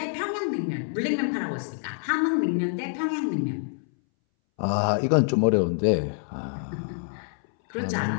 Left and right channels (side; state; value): right; silent; 61 dB below the other